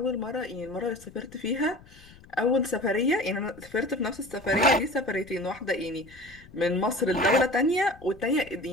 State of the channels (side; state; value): left; noise; rumble, 23 dB below the sound